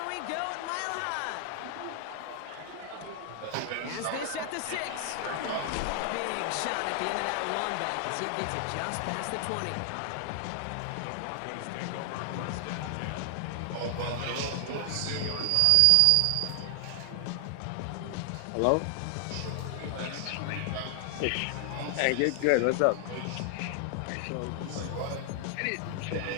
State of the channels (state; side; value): different; both; correlation 0.00